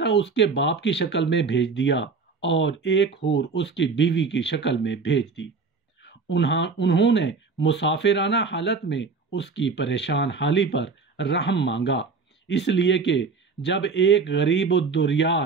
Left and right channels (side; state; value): left; quieter; 4.6 dB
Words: اس کے باپ کی شکل میں بھیج دیا اور ایک حور اس کی بیوی کی شکل میں بھیج دی۔ انہوں نے مسافرانہ حالت میں اس کی پریشان حالی پر رحم مانگا، اس لیے کہ جب ایک غریب